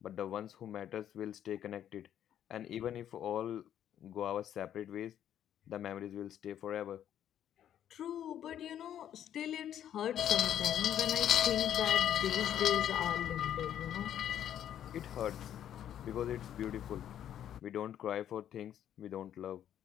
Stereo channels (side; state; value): right; quieter; 10.5 dB